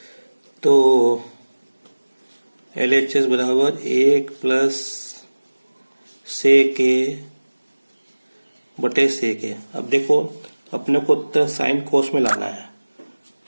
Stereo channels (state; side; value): inverted; both; correlation -1.00